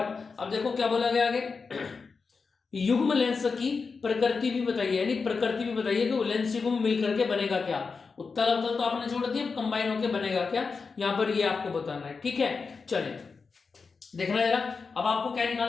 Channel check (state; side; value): quieter; right; 4.8 dB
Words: अब देखो क्या बोला गया आगे। युग्म लेंस की प्रकृति भी बताइए, यानी प्रकृति भी बताइए कि वो लेंस युग्म मिल करके बनेगा क्या। उत्तल अवतल तो आपने छोड़ दिया, कंबाइन होकर बनेगा क्या, यहां पर ये आपको बताना है। ठीक है, चलिए देखना जरा। अब आपको क्या